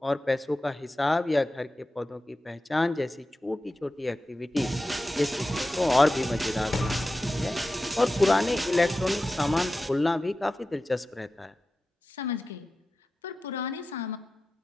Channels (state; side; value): normal; both; correlation 0.94